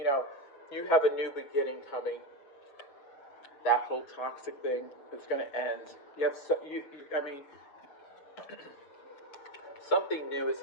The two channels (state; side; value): late; right; 6.8 ms